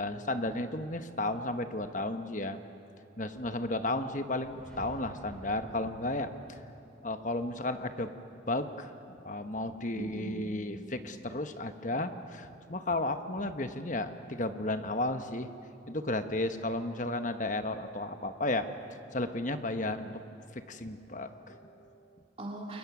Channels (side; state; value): both; normal; correlation 0.14